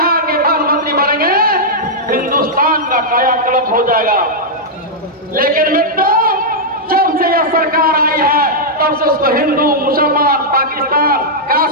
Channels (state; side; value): normal; both; correlation -0.07